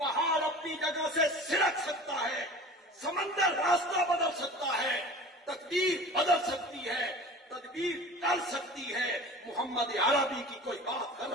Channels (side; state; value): both; normal; correlation 0.39